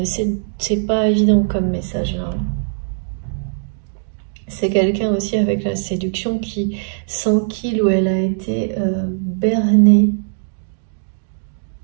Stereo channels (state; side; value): silent; left; digital silence